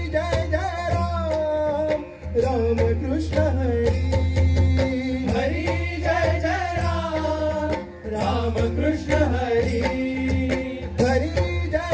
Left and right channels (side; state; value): both; identical; correlation 1.00